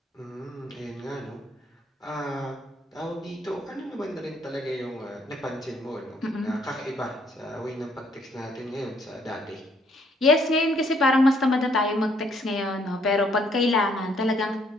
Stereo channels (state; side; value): normal; both; correlation 0.67